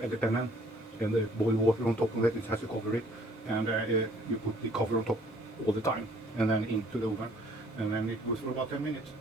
add the penne and the boiled water on top of it. It has to cover it, and you put the cover on top all the time, and then into the oven, and then it goes for about 10 minutes.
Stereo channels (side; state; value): both; normal; correlation 0.59